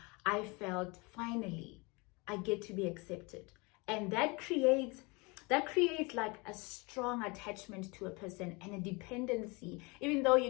I felt finally I get to be accepted. And that creates like a strong attachment to a person and a dependency, even though you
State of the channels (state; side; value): quieter; right; 27.5 dB